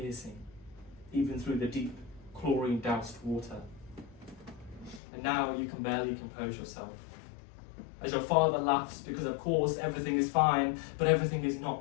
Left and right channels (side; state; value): right; drops out; at 5.0 s